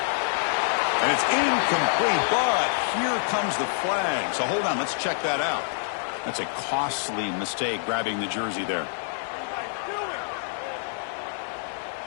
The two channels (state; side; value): silent; right; 61 dB below the other